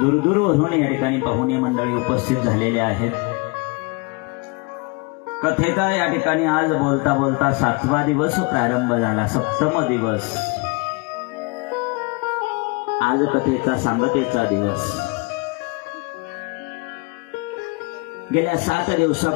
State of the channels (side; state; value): right; quieter; 28.6 dB